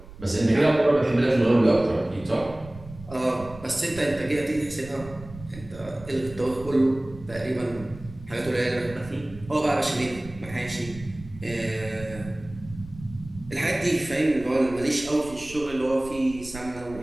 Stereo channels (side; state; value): right; noise; rumble, 16 dB below the sound